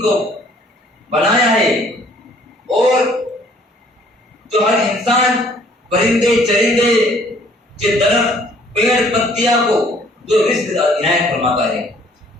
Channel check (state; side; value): normal; both; correlation 0.59